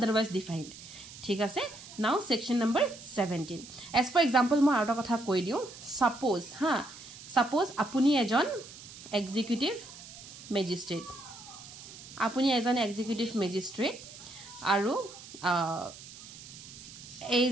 defined ঠিক আছে now section number 17 as for example মই আৰু কথা কৈ দিও suppose apuni ejon executive magistrate aru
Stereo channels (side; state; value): right; noise; hiss, 16 dB below the sound